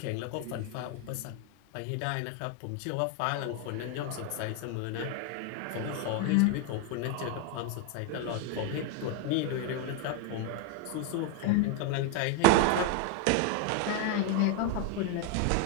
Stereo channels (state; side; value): different; both; correlation 0.01